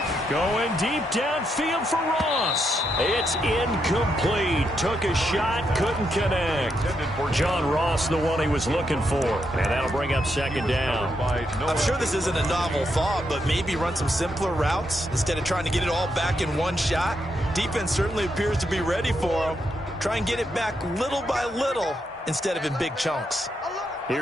Going deep downfield for Ross. It's incomplete. Took a shot, couldn't connect. John Ross, the one he was looking for. And that'll bring up second down. I'm sure this isn't a novel thought, but maybe run some simpler routes instead of trying to get it all back in one shot. Defense certainly appears to be ready for them. Try and get it back little by little instead of in big chunks.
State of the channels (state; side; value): normal; both; correlation 0.80